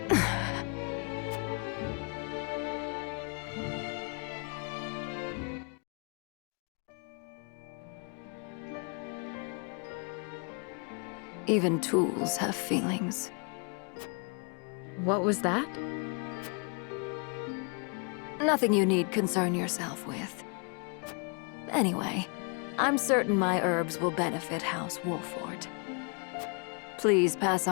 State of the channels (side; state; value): right; quieter; 36.4 dB